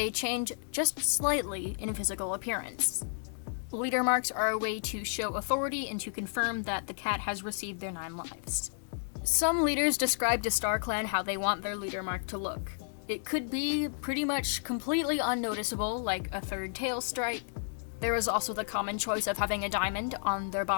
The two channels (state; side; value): silent; right; digital silence